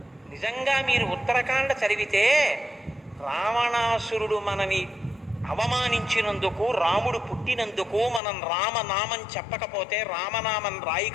నిజంగా మీరు ఉత్తరకాండ చదివితే రావణాసురుడు మనని అవమానించినందుకు, రాముడు పుట్టినందుకు మనం రామనామం చెప్పకపోతే, రామనామం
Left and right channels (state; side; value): drops out; right; at 8.2 s